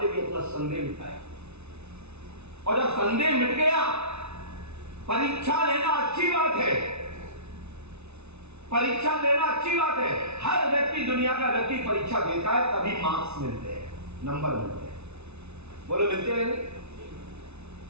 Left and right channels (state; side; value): late; left; 0.81 ms